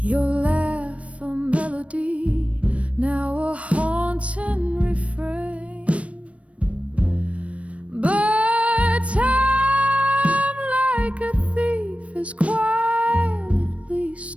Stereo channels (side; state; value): left; late; 0.063 ms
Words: laugh a melody, now a haunting refrain. But time, like a thief, is quietly